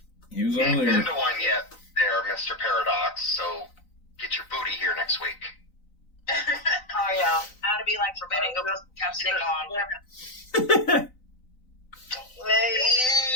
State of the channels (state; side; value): late; right; 3.9 ms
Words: He was Ain't over been there. to one yet there, Mr. Paradox, so get your booty here next week. Oh yeah. How to be like forbidden. Go put chapstick on.